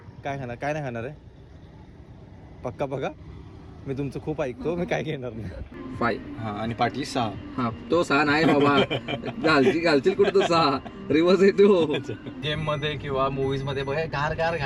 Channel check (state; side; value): identical; both; correlation 1.00